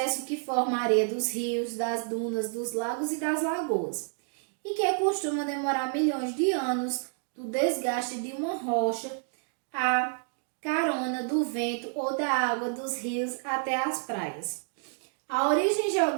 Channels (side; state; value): left; silent; 58 dB below the other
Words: que forma a areia dos rios, das dunas, dos lagos e das lagoas, e que costuma demorar milhões de anos do desgaste de uma rocha à carona do vento ou da água dos rios até as praias. A origem